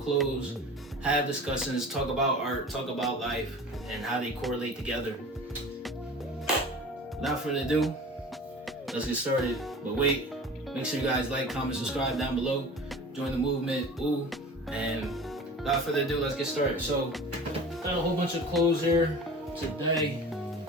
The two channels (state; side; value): normal; both; correlation 0.39